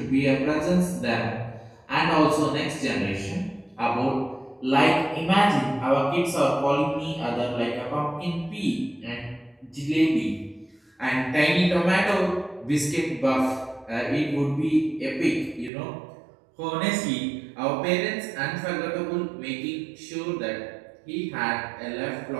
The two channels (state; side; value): drops out; left; at 15.7 s